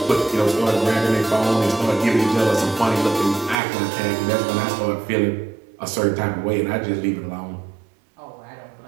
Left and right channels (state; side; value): drops out; left; at 3.6 s